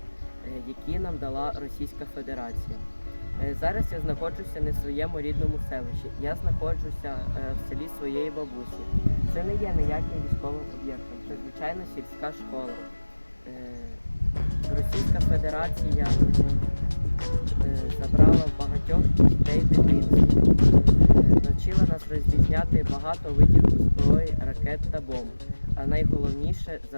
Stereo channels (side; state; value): both; inverted; correlation -1.00